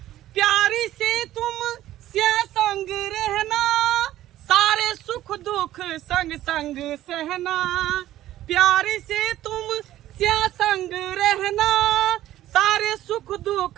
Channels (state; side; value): quieter; left; 13.8 dB